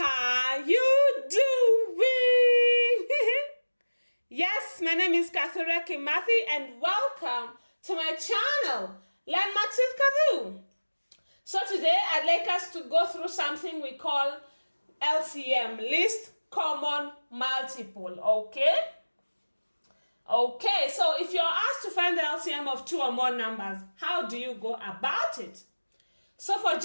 you doing? Yes, my name is Kathure Kimathi and welcome to my channel, Learn Maths with Kathu. So today I'd like us to go through something we call LCM, Least Common Multiple, okay? Okay, so if you're asked to find the LCM of two or more numbers, how do you go about it? So for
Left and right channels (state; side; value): inverted; both; correlation -1.00